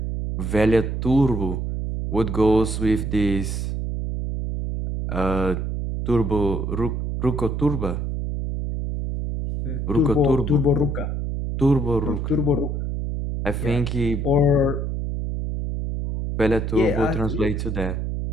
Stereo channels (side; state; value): right; noise; hum, 2 dB below the sound